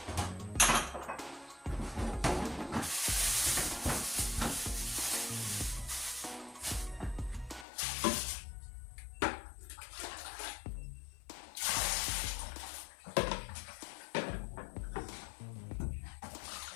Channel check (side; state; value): right; drops out; at 7.7 s